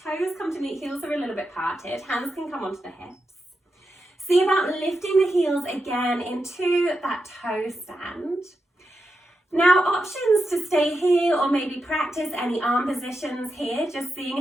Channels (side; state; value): both; normal; correlation 0.87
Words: come to meet, heels are a little bit parted, hands can come onto the hips. See about lifting the heels again into that toe stand. Now, options to stay here or maybe practice any arm positions here, just